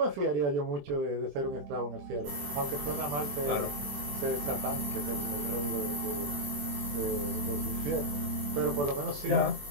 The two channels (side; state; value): left; late; 21 ms